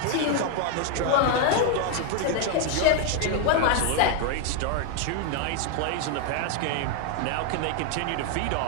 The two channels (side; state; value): both; different; correlation 0.01